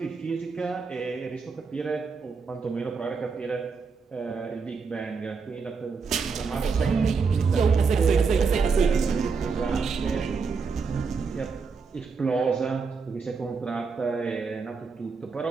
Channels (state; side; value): quieter; left; 5.1 dB